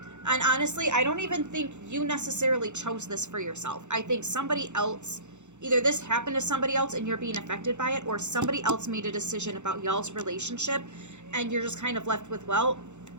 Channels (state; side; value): late; left; 0.84 ms